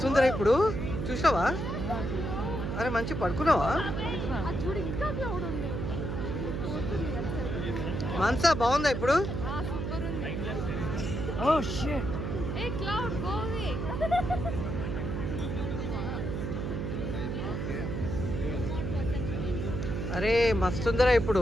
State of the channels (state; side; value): noise; right; hum, 3 dB below the sound